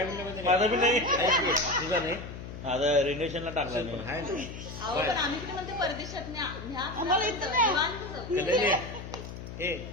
म्हणलं म्हणजे माझा बी नाही. तुझा नाही आता रिलेशनला टाकला असेल पण नाही आहे ना. अहो पण आम्ही कुठे म्हणतो परदेशात न्या न्या आम्हाला इथं नाही. निवांत जाऊ. कल्याणी ए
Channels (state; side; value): noise; left; hum, 10 dB below the sound